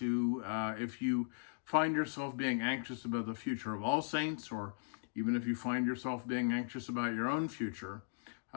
if you find yourself being anxious about the future of All Saints, or even if you find yourself being anxious about your own future,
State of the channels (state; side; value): silent; right; digital silence